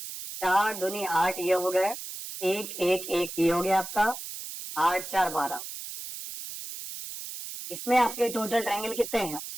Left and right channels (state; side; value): noise; right; hiss, 9 dB below the sound